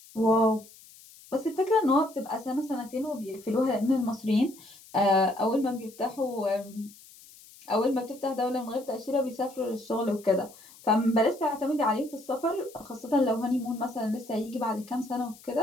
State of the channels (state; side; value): noise; left; hiss, 22 dB below the sound